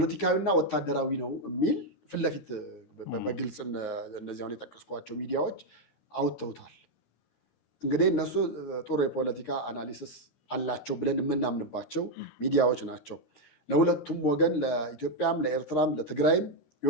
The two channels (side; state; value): right; late; 13 ms